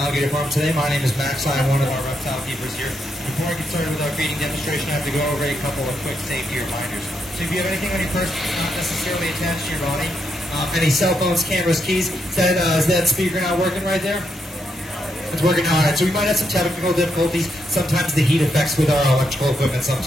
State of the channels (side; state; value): both; normal; correlation 0.80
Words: Farm today. My name is Max. I'm one of our reptile keepers here. Before I get started with our feeding demonstration, I have to go over a couple of quick safety reminders. So if you have anything on your person not necessarily attached to your body, any cell phones, cameras, keys, is that speaker not working right there? It's working now. All right, so we might have some technical difficulties. Sometimes the heat affects with our electrical equipment